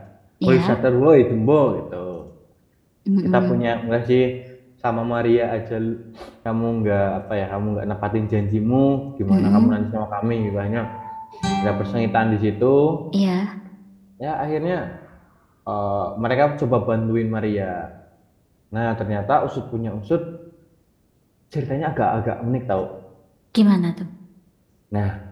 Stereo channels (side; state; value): both; identical; correlation 1.00